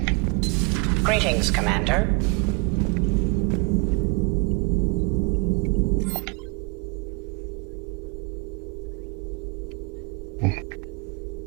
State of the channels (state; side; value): quieter; left; 30.6 dB